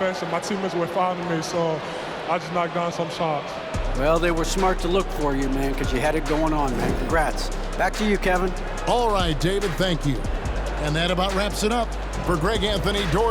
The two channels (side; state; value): both; identical; correlation 1.00